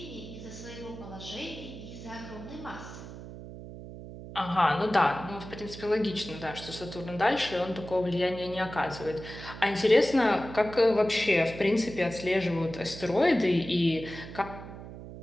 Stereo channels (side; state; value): right; noise; hum, 12 dB below the sound